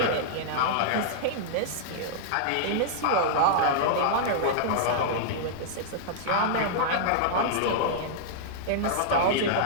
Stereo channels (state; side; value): different; both; correlation -0.02